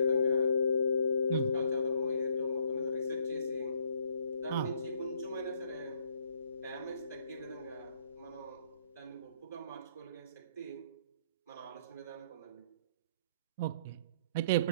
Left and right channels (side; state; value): both; inverted; correlation -0.65